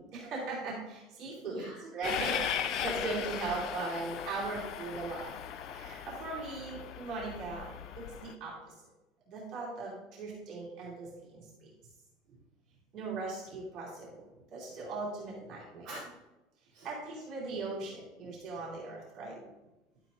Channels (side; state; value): both; normal; correlation 0.38